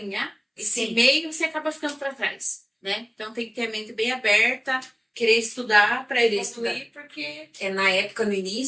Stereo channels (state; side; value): identical; both; correlation 1.00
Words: esse Sim. meio, você acaba ficando para trás, né? Então tem que ter a mente bem aberta, querer estudar para evoluir, porque Na época, no